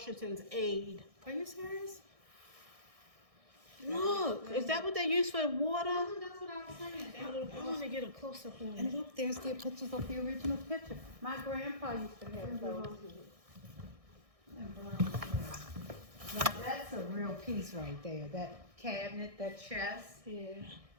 aide. Are you serious? Look, is that what they use for water? That's what I was saying. I want to get a close up on And it. look, there's the pictures of the original picture. My grandpa used to have those. Now that's a real piece right there. That cabinet, that chest. Yeah.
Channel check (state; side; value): late; left; 1.6 ms